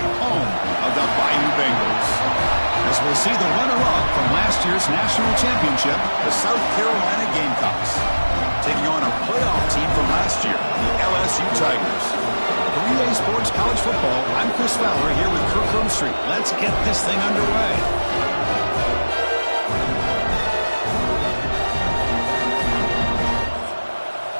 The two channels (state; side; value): inverted; both; correlation -1.00